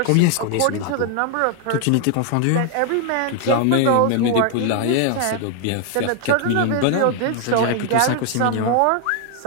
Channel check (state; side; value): different; both; correlation 0.00